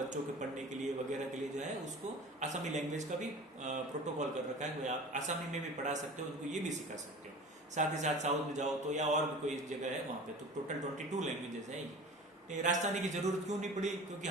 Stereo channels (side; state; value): both; normal; correlation 0.38